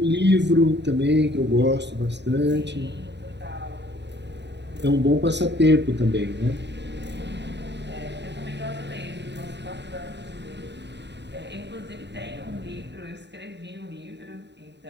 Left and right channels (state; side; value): late; left; 0.51 ms